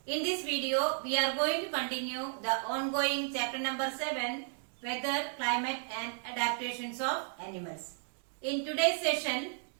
In this video, we are going to continue the ongoing chapter number 7, Weather, Climate and Adaptations of Animals. In today's session,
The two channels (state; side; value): silent; left; 55 dB below the other